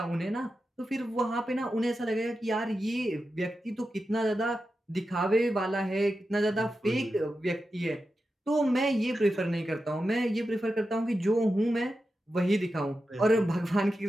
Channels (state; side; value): normal; both; correlation 0.90